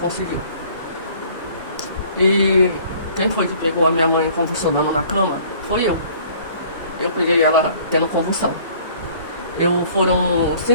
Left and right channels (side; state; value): both; inverted; correlation -0.54